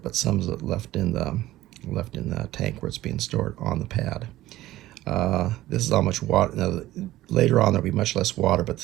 but some is left in the tank where it's being stored on the pad. This is how much water. Now, later on there'll be much less water, but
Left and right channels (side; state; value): left; quieter; 15.6 dB